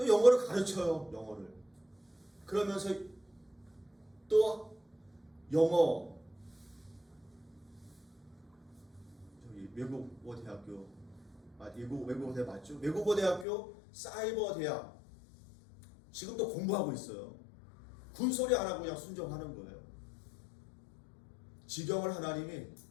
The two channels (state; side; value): drops out; right; at 13.5 s